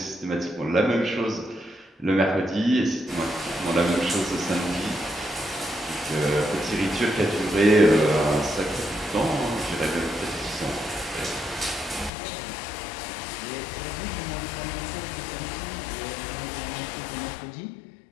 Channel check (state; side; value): drops out; right; at 12.1 s